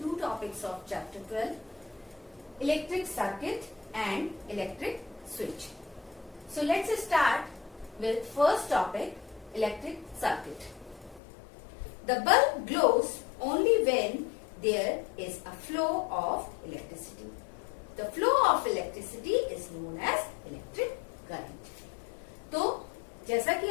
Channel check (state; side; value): drops out; right; at 11.2 s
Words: two topics of chapter 12, electric circuit and electric switch. So let's start with first topic, electric circuit. The bulb glows only when there is a flow of electricity. The flow of electricity is known as electric current. तो जैसा कि